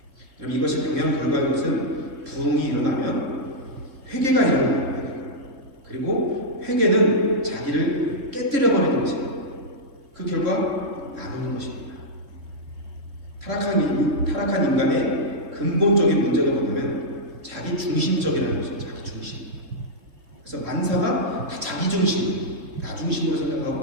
여러분 이것이 당연한 결과인 것은 부흥이 일어나면 회개가 일어납니다. 그리고 회개는 자기를 깨뜨려버리는 것입니다. 그 결과 나누는 것입니다. 타락한 인간의 근본적인 문제가 뭐냐면 자기 중심적이라는 것이죠. 자기 중심. 그래서 만사가 다 자기 중심, 나 중심으로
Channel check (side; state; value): left; late; 3.8 ms